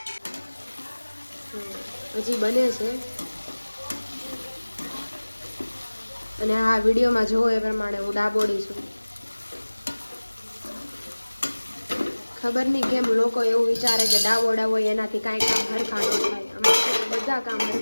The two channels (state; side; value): inverted; both; correlation -1.00